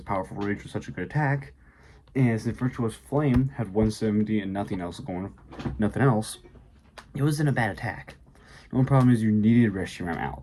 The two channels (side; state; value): both; identical; correlation 1.00